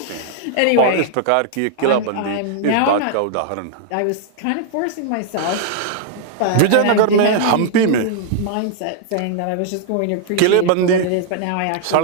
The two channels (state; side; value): different; both; correlation -0.01